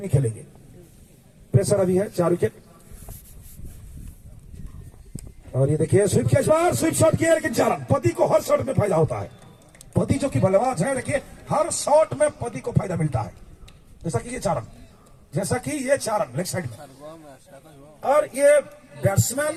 खेलेंगे? प्रेशर अभी है 4 विकेट। और ये देखिए स्वीप के इस बार स्वीप शॉट किया, लेकिन चारण। पति को हर शॉट में फायदा होता है। पति जो कि बल्लेबाज है, देखिए हर शॉट में पति को फायदा मिलता है। जैसा कि ये चारण, जैसा कि ये चारण लेग साइड में। और ये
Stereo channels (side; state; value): both; identical; correlation 1.00